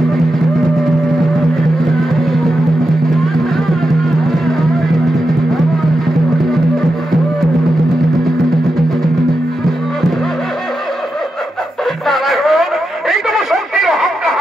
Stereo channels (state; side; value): normal; both; correlation 0.88